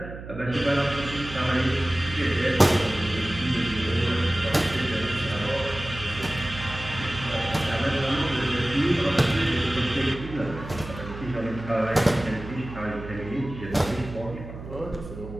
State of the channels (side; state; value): right; noise; hum, 12 dB below the sound